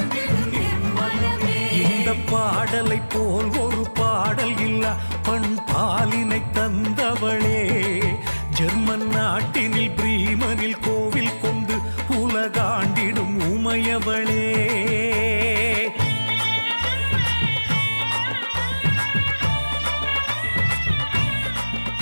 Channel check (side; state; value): both; inverted; correlation -1.00